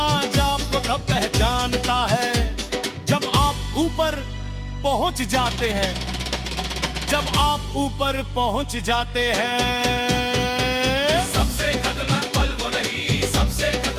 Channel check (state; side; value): identical; both; correlation 1.00